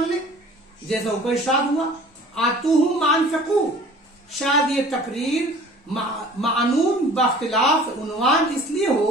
لے، جیسا اوپر ارشاد ہوا آتوہم ما انفقوا. شاید یہ تقریر معنون باختلاف عنوان اس لیے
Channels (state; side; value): normal; both; correlation 0.47